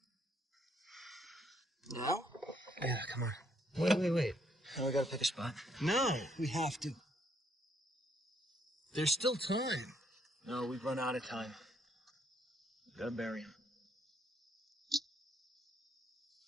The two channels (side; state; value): both; normal; correlation 0.70